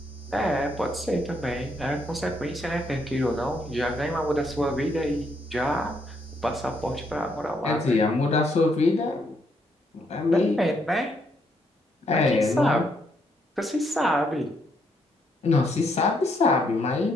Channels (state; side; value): normal; both; correlation 0.74